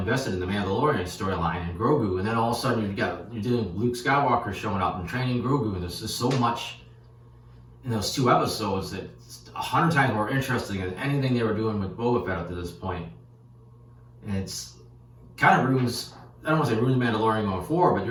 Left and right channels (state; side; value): identical; both; correlation 1.00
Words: in the Mandalorian storyline and Grogu, and then all of a sudden you're doing Luke Skywalker showing up and training Grogu, and there's just so much in those 2 episodes that it's 100 times more interesting than anything they were doing with Boba Fett up to this point. And it's kind of ruins, I don't want to say ruins Mandalorian going forward, but